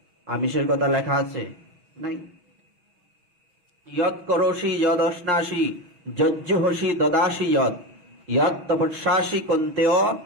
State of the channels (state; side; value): late; left; 6.2 ms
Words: আমিষের কথা লেখা আছে? নাই। ইয়ৎ করোষি যদ অশ্নাসি যজ্জুহসি দদাসি যৎ ইয়ৎ তপস্যাসি কন্তেয়